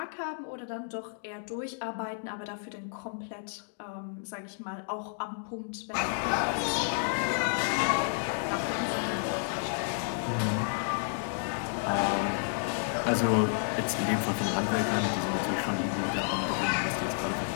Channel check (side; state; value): right; silent; digital silence